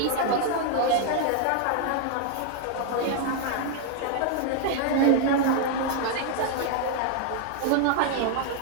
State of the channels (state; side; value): different; both; correlation 0.00